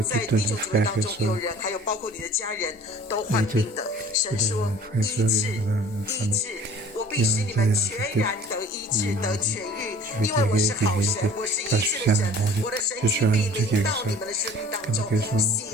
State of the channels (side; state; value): both; normal; correlation 0.48